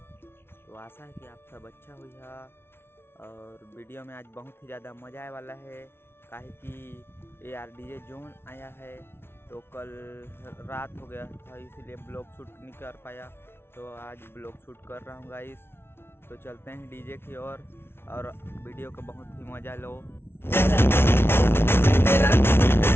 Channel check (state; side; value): late; right; 0.12 ms